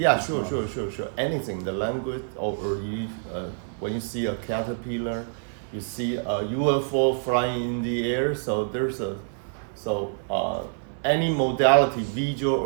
sure. Anything, the language, or you, when you see a caterpillar, you see a UFO flying in the air. So there's any modality, visual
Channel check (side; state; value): left; silent; 61 dB below the other